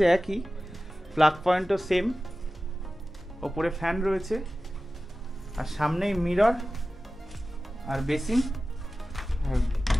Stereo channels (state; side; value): normal; both; correlation 0.95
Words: একই, প্লাগ পয়েন্টও সেম, ওপরে ফ্যান রয়েছে আর সামনেই মিরর আর বেসিন।